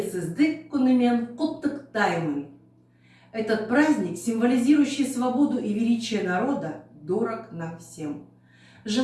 күнімен құттықтаймын. Этот праздник, символизирующий свободу и величие народа, дорог нам всем.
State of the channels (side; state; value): both; identical; correlation 1.00